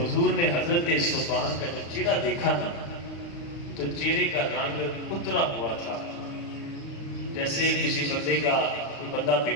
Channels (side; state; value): right; late; 36 ms